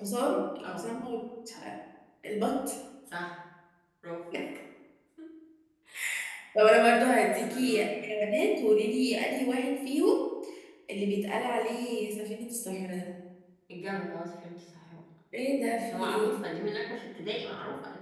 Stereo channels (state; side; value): identical; both; correlation 1.00